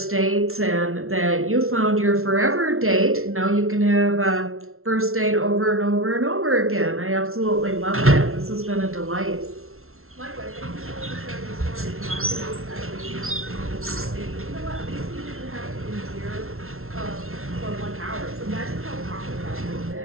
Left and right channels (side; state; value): left; late; 0.62 ms